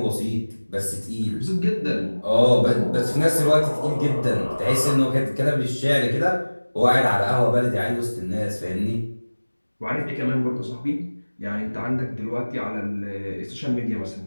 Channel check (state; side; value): inverted; both; correlation -1.00